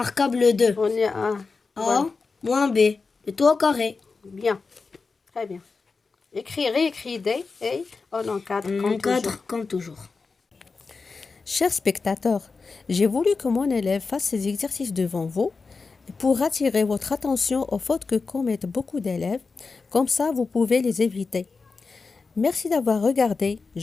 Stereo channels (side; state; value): right; quieter; 4.4 dB